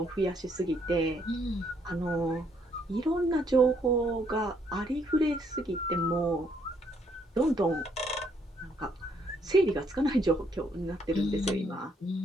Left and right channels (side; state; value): both; normal; correlation 0.70